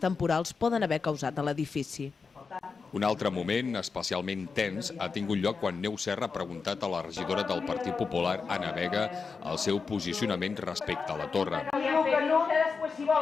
poden haver causat a l'edifici. Un altre moment especialment tens ha tingut lloc quan Neus Serra ha preguntat a la regidora del Partit Popular, Anna Vega, el seu posicionament respecte a la torre. Diu que no, després si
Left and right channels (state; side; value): quieter; right; 5.0 dB